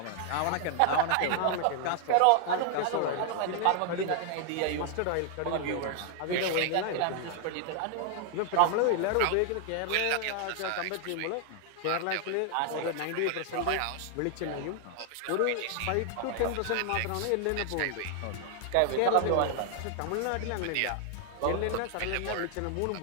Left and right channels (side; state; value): both; different; correlation 0.00